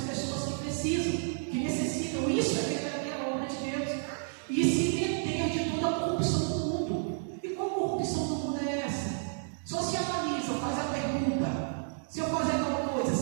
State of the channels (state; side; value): silent; left; digital silence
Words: pessoas que precisam, que necessitam. Isso é verdadeira obra de Deus. E se meter de toda a corrupção do mundo. E qual corrupção do mundo é essa? Só se analisa, faz a pergunta: se eu fazer tal coisa,